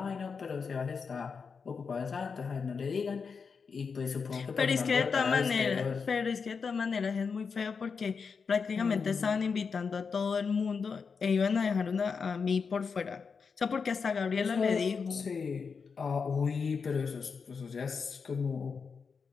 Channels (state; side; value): quieter; right; 5.5 dB